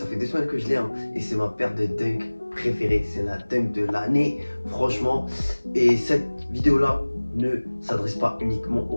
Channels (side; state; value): both; inverted; correlation -1.00